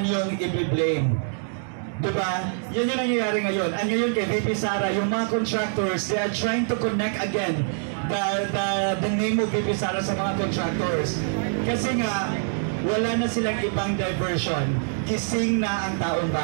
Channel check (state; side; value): silent; left; digital silence